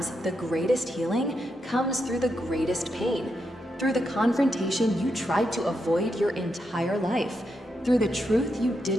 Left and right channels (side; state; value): both; normal; correlation 0.83